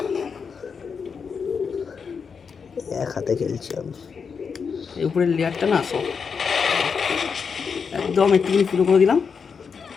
এক হাতে খেলছি আমি। এই উপরের লেয়ারটা না সব একদম একটুখানি ফুটো করে দিলাম।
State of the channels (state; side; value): quieter; right; 5.9 dB